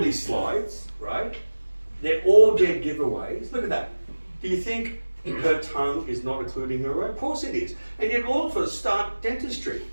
slides, right? They're all dead giveaways. Look at that. Do you think her tongue is not including her own? Of course it is. And yet all of us start dentistry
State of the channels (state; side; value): inverted; both; correlation -1.00